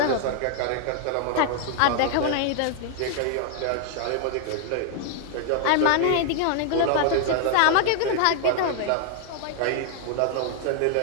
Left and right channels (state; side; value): different; both; correlation 0.00